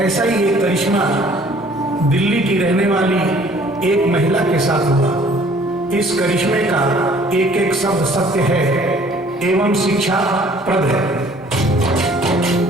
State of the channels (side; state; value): both; normal; correlation 0.55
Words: ही एक करिश्मा दिल्ली की रहने वाली एक महिला के साथ हुआ। इस करिश्मे का एक एक शब्द सत्य है एवं शिक्षाप्रद है।